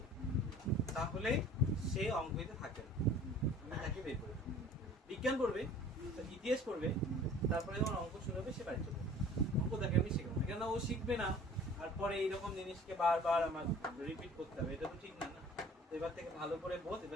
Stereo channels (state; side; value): normal; both; correlation 0.48